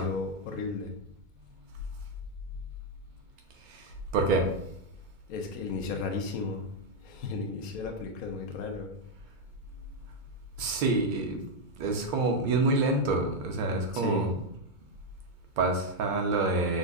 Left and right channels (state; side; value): late; left; 2.2 ms